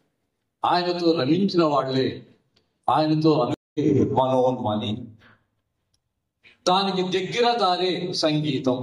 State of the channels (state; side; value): identical; both; correlation 1.00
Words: ఆయనతో రమించిన వాళ్లే, ఆయనతో మనోన్మణి. దానికి దగ్గర దారే సంగీతం.